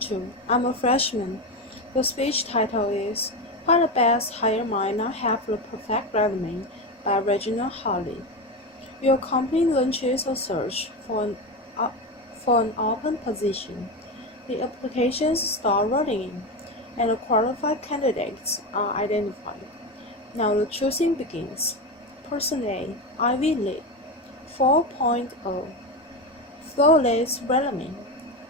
I'm a freshman. The speech title is Why the Best Hire Might Not Have the Perfect Resume by Regina Hartley. Your company launches a search for an open position. The applications start rolling in, and the qualified candidates are identified. Now the choosing begins. Person A, Ivy League, 4.0. Flawless resume,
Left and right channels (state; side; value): normal; both; correlation 0.17